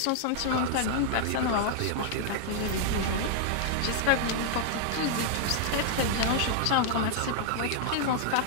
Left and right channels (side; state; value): both; different; correlation 0.00